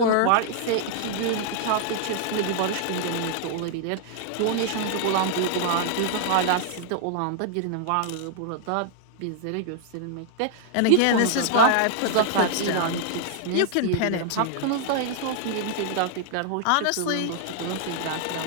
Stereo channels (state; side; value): different; both; correlation 0.00